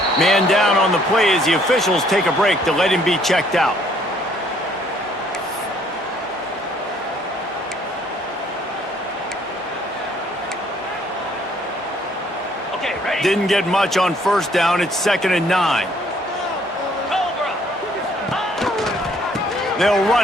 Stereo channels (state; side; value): normal; both; correlation 0.63